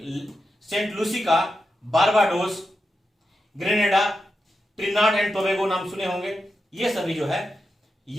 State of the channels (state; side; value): normal; both; correlation 0.88